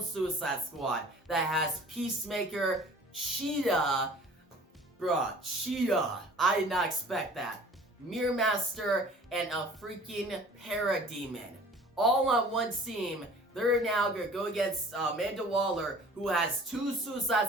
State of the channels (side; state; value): both; normal; correlation 0.47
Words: Suicide Squad that has Peacemaker, Cheetah, Cheetah, I did not expect that, Mirror Master, and a freaking Parademon. All on one team. They're now going to go against Amanda Waller, who has two